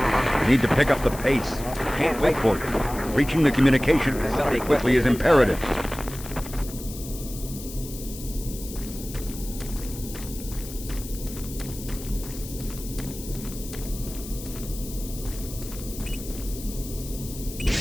You need to pick up the pace. Can't wait for you. Reaching the communication facility quickly is imperative.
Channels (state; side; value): noise; left; hiss, 13 dB below the sound